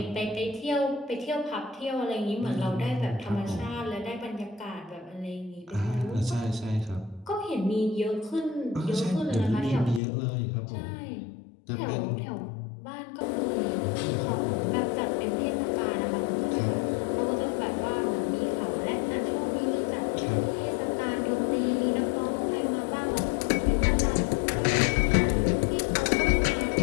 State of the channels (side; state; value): right; drops out; at 10.0 s